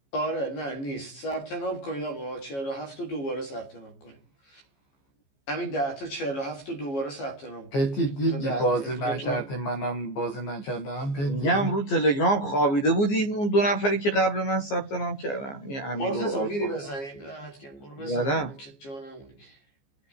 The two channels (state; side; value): late; right; 14 ms